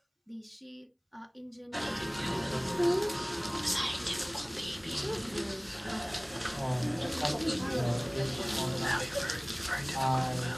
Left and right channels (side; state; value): both; identical; correlation 1.00